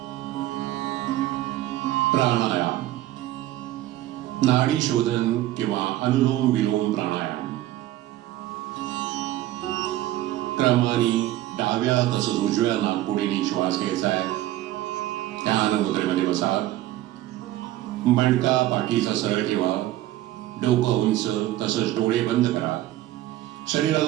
प्राणायाम, नाडी शोधन किंवा अनुलोम विलोम प्राणायाम. क्रमाने डाव्या तसंच उजव्या नाकपुडीने श्वास घ्यायचा आहे. ध्यान मुद्रेमध्ये बसा. मणका पाठीचा सरळ ठेवा. डोकं उंच तसंच डोळे बंद करा.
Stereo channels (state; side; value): quieter; left; 15.0 dB